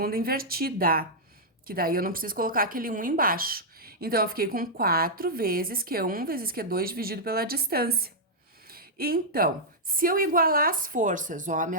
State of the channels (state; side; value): normal; both; correlation -0.08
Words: invertida, que daí eu não preciso colocar aquele 1 embaixo. Então, eu fiquei com 4 vezes Q1 vezes Q2 dividido pela distância. Então, se eu igualar as forças, ó, a